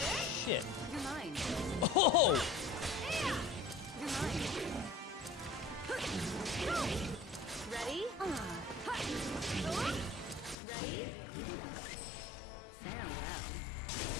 You're mine. Oh! You're mine. Ready? Ready? Farewell.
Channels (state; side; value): drops out; right; at 10.6 s